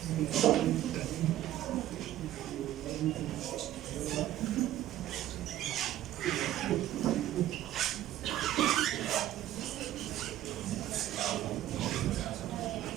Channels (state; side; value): quieter; left; 13.4 dB